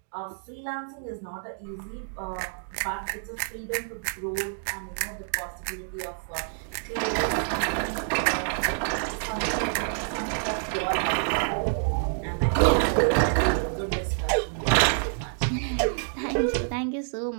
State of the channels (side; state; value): left; silent; digital silence